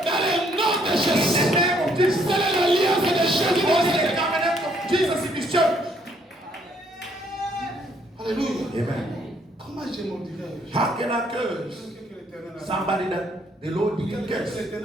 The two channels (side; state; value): both; normal; correlation 0.67